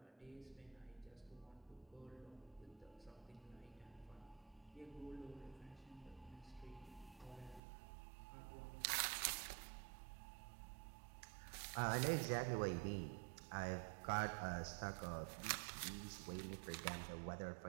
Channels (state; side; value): drops out; left; at 7.6 s